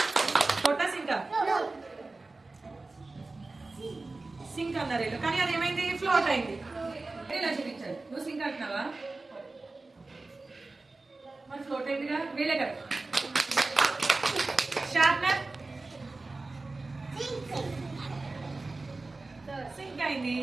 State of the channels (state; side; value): quieter; left; 3.4 dB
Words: ఫ్లోటా సింకా? సింక్ అన్నారు వీళ్ళు, కానీ అది ఏమైంది? ఫ్లోట్ అయింది. ఇలా చూపించాలి. నువ్వు సింక్ అంటున్నావా? మరి ఫ్లోట్ అయిందిగా, వీళ్ళే కదా. షార్ప్నర్ సింక్ అయింది.